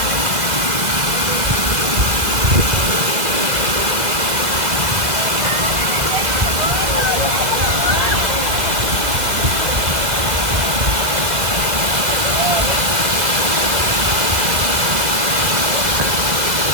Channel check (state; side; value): late; left; 1.9 ms